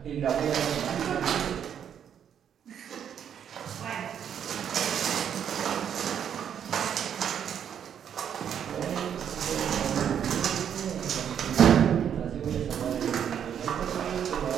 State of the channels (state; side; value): quieter; left; 8.7 dB